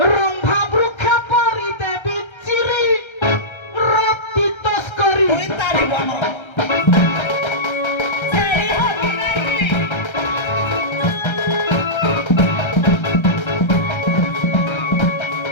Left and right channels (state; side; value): late; right; 1.3 ms